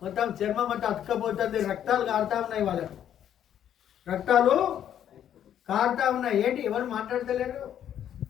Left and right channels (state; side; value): quieter; right; 10.1 dB